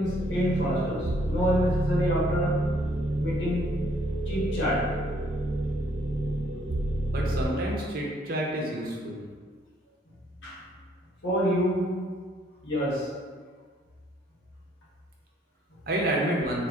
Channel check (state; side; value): normal; both; correlation 0.66